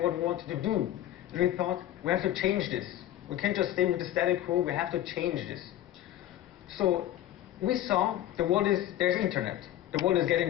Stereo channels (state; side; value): quieter; right; 12.8 dB